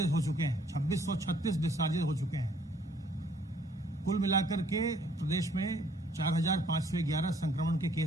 हो चुके हैं। 2636 डिस्चार्जेस हो चुके हैं। कुल मिलाकर के प्रदेश में 4511 संक्रमण के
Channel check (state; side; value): normal; both; correlation 0.62